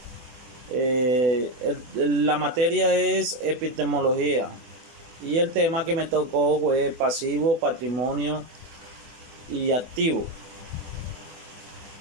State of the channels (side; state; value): left; late; 24 ms